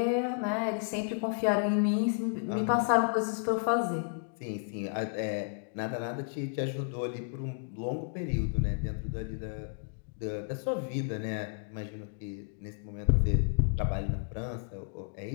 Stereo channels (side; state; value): right; silent; digital silence